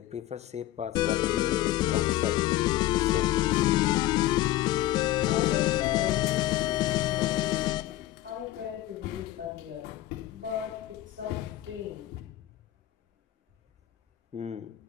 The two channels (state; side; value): quieter; right; 14.7 dB